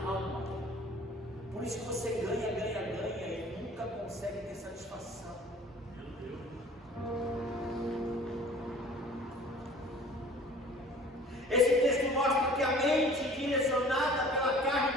alma, por isso que você ganha e nunca consegue ter satisfação. Esse texto mostra que a mente direcionada pela carne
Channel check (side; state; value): both; normal; correlation 0.48